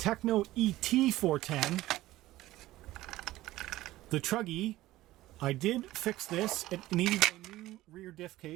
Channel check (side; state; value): left; quieter; 16.4 dB